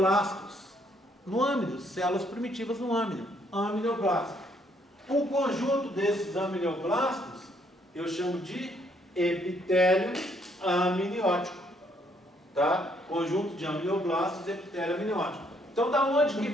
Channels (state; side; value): normal; both; correlation 0.69